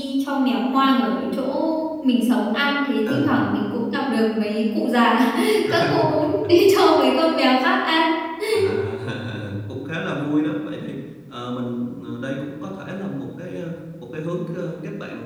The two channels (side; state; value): both; identical; correlation 1.00